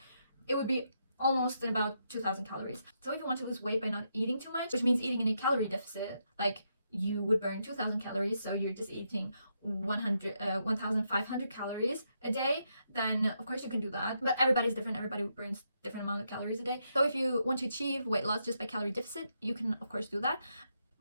it would be almost about 2,000 calories. So if you want to lose weight by not eating too much, which means eating in a calorie deficit, like you would burn 2,000 calories, so you're just eating 1,500 calories a day, then of course you can do that. But everybody's different, everybody burns different amount of calories a day. So if you want to achieve weight loss just by calorie deficit, you can of course do that.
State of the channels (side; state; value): both; inverted; correlation -0.80